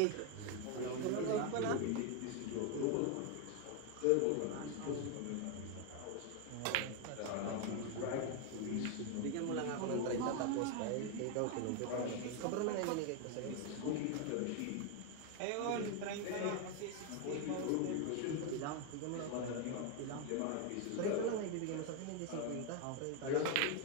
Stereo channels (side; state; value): both; different; correlation 0.01